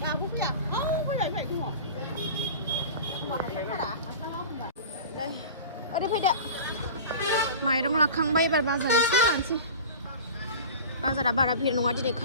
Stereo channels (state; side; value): inverted; both; correlation -0.36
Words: दाबो फैया फैबाय ओरै फैदो माइरं लाखांबाय एबार बाजार एसे लानोसै बाजारा बारा भिर नङा दिनै